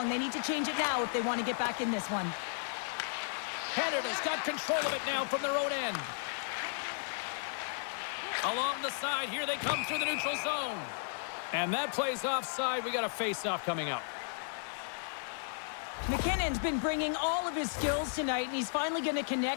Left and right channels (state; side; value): silent; right; digital silence